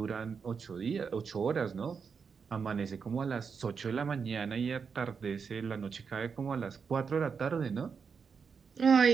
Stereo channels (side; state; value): left; quieter; 5.9 dB